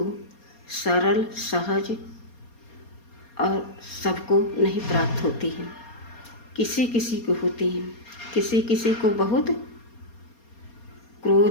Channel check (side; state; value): right; late; 4.3 ms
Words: सरल, सहज और सबको नहीं प्राप्त होती है, किसी किसी को होती है, किसी किसी को बहुत